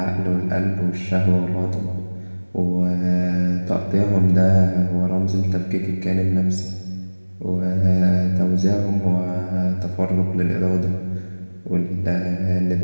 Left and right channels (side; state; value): both; inverted; correlation -1.00